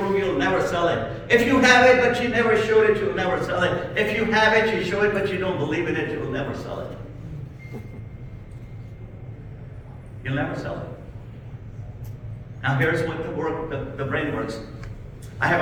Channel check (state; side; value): identical; both; correlation 1.00